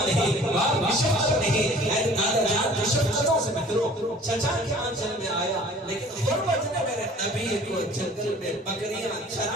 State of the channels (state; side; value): normal; both; correlation 0.49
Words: نہیں، باپ کی شفقت نہیں. دادا جان کی شفقتوں سے محروم چچا کے آنچل میں آیا، لیکن غربت نے میرے نبی کو جنگل میں بکریاں